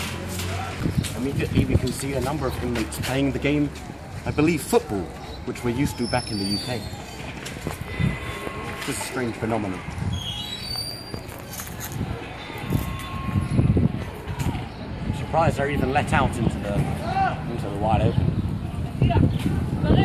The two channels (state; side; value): identical; both; correlation 1.00